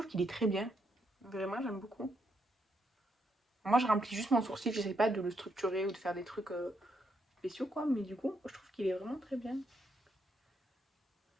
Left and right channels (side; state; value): both; normal; correlation 0.78